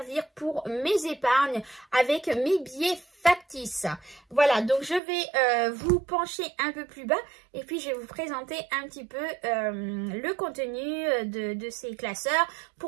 pour mes épargnes avec mes billets factices. Voilà, donc je vais vous pencher un peu plus bas et puis je vais vous présenter un petit peu le contenu de ces classeurs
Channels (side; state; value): left; drops out; at 5.0 s